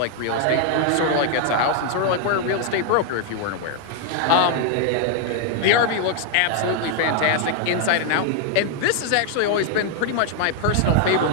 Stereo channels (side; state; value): both; different; correlation 0.00